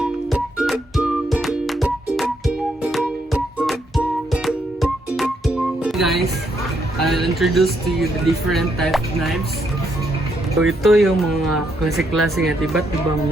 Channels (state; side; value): normal; both; correlation 0.76